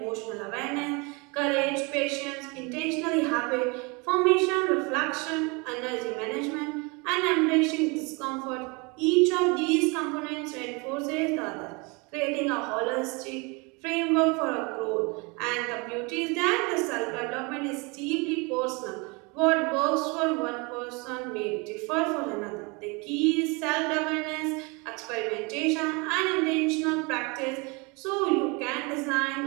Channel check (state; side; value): quieter; left; 28.9 dB